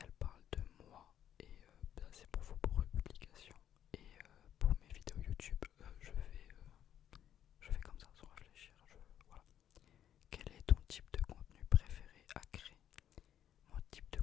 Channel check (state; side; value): quieter; right; 10.3 dB